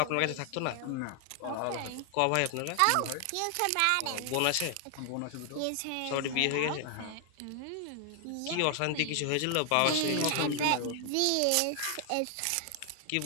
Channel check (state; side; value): different; both; correlation 0.00